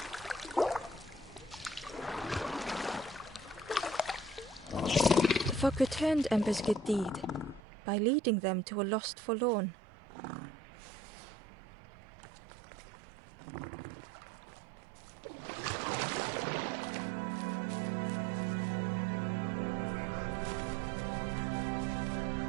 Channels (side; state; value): left; drops out; at 7.6 s